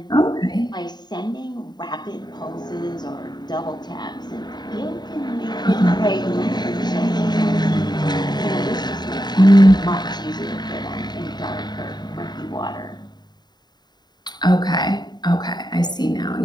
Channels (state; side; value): late; right; 0.20 ms